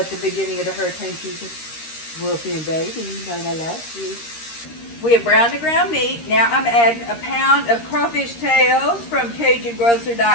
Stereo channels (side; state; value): right; late; 13 ms